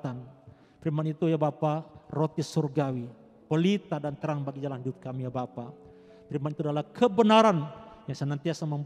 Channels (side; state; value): both; identical; correlation 1.00